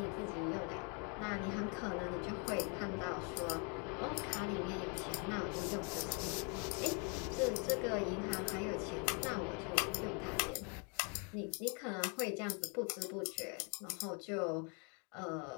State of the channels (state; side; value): quieter; right; 35.9 dB